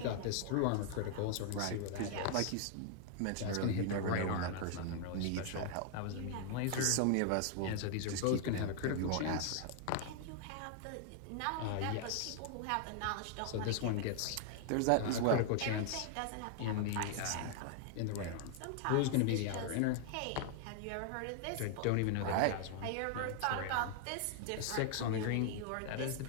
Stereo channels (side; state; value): both; different; correlation 0.00